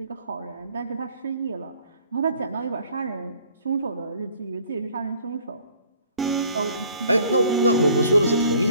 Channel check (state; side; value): inverted; both; correlation -0.56